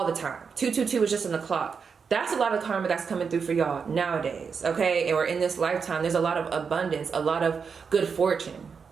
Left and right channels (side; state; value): left; quieter; 5.9 dB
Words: the time. 222 is just in the clock. That's a lot of karma that's coming through for y'all nowadays, okay? Or in this lifetime, there's a lot of abundance, a lot of good fortune.